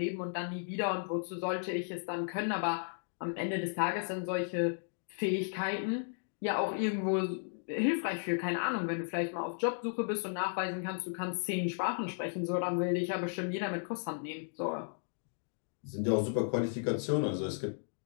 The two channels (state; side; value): silent; right; digital silence